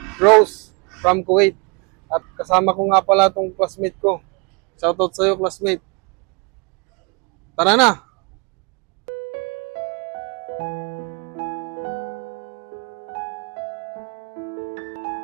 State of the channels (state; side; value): quieter; left; 31.6 dB